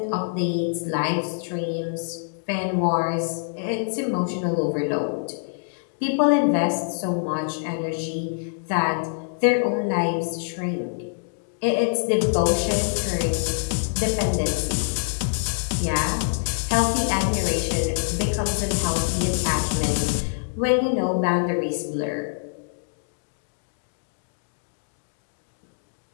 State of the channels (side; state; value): right; silent; digital silence